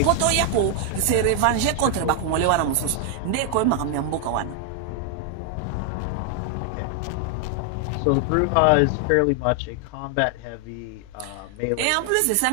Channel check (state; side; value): different; both; correlation 0.00